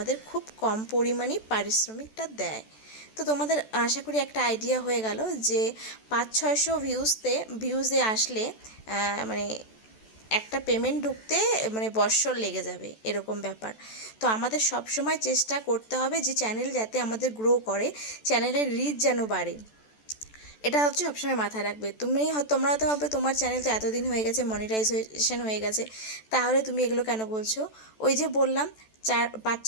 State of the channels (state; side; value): late; right; 14 ms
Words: খুব কম পরিমাণেই পারিশ্রমিকটা দেয়। তো তোমাদের আশা করি একটা আইডিয়া হয়ে গেল যে 500-600 ভিউজে আসলে মানে একটা পেমেন্ট ঢুকতে মানে বৎসর লেগে যাবে, এরকম ব্যাপার। তো আমাদের সব সময় চেষ্টা করতে হবে যে চ্যানেল যাতে আমাদের গ্রো করে, চ্যানেলের রিচ যেন বাড়ে, এটা হচ্ছে সবসময় মাথায় রাখবে। তোমরা হয়তো ভাববে তোমার চ্যানেল তো এতদিন হয়ে গেছে, মনিটাইজেশন হয়ে গেছে, তাহলে তুমি এগুলো কেন বলছো? ওই যে বললাম,